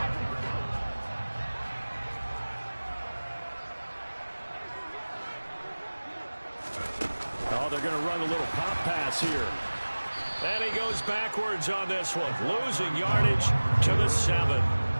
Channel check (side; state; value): both; inverted; correlation -1.00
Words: Oh, they're going to run a little pop pass here. And he goes backwards on this one, losing yardage to the 7.